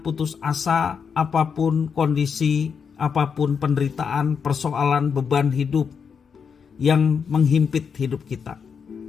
asa apapun kondisi, apapun penderitaan, persoalan, beban hidup yang menghimpit hidup kita.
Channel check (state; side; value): quieter; right; 6.4 dB